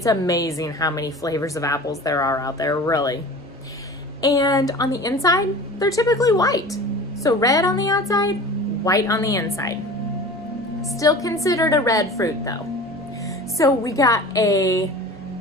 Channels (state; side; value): normal; both; correlation 0.38